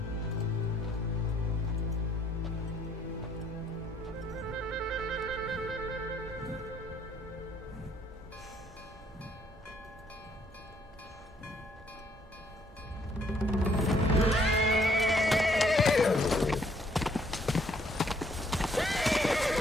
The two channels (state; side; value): normal; both; correlation 0.66